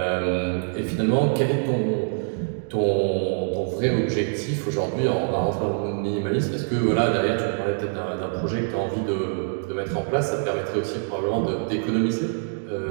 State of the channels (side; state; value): left; silent; digital silence